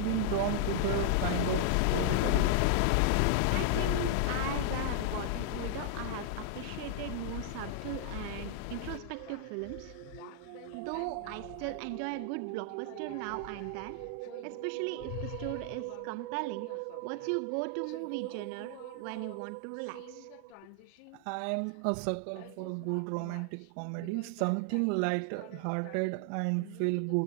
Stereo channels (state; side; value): different; both; correlation 0.00